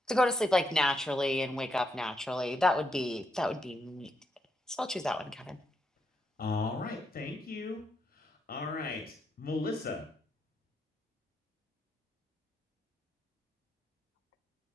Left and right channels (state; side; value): normal; both; correlation 0.80